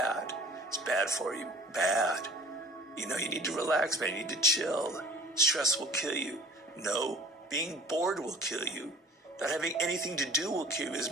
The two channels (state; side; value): normal; both; correlation 0.48